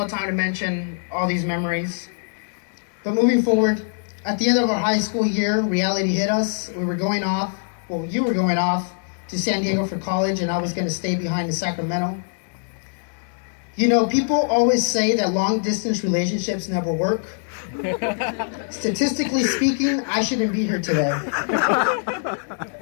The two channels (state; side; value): silent; right; digital silence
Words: time to mention all these memories. But moving forward, at the end of our high school year, reality hit us. We were going off, well, you were going off to San Diego for college, and I was going to stay behind in Sacramento. You know, people always say that long-distance relationships never work. Statistically speaking, I shouldn't be here today.